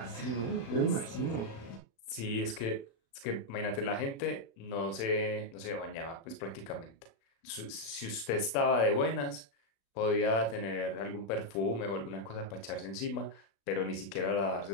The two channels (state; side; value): late; right; 36 ms